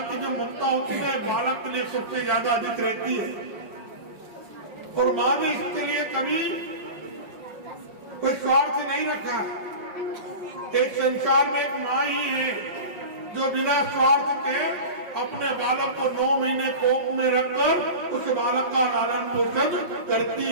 की जो ममता होती है ना बालक के लिए सबसे ज्यादा अधिक रहती है। और माँ ने इसके लिए कभी कोई स्वार्थ नहीं रखा। एक संसार में एक माँ ही है जो बिना स्वार्थ के अपने बालक को 9 महीने कोख में रखकर उस बालक का लालन पोषण करती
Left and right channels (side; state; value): left; late; 5.2 ms